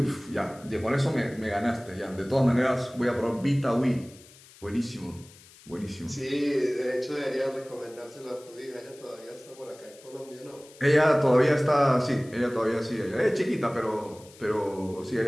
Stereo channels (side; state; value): left; noise; hiss, 23 dB below the sound